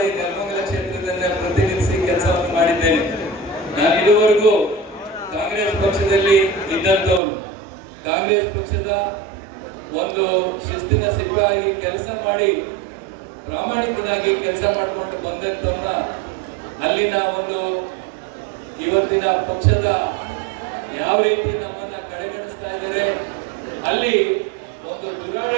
ನೆಲಮಂಗಲ ಕ್ಷೇತ್ರದಲ್ಲಿ ಪ್ರತಿನಿಧಿಸಿ ಕೆಲಸವನ್ನು ಮಾಡಿದ್ದೇನೆ. ನಾನು ಇದುವರೆಗೂ ಕಾಂಗ್ರೆಸ್ ಪಕ್ಷದಲ್ಲಿ ಇದ್ದಂತವನು, ಕಾಂಗ್ರೆಸ್ ಪಕ್ಷದ ಒಂದು ಶಿಸ್ತಿನ ಸಿಪಾಯಿ ಕೆಲಸ ಮಾಡಿ ಪ್ರಾಮಾಣಿಕನಾಗಿ ಕೆಲಸ ಮಾಡಿಕೊಂಡು ಬಂದಂತವನ್ನ ಅಲ್ಲಿನ ಒಂದು ಇವತ್ತಿನ ಪಕ್ಷದ ಯಾವ ರೀತಿ ನಮ್ಮನ್ನ ಕಡೆಗಣಿಸ್ತಾ ಇದ್ದಾರೆ, ಅಲ್ಲಿ ಒಂದು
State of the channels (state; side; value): drops out; left; at 7.2 s